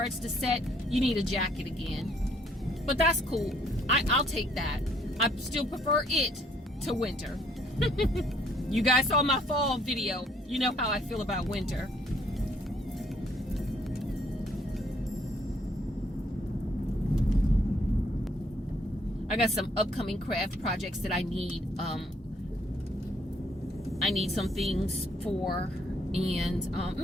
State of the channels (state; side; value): normal; both; correlation 0.66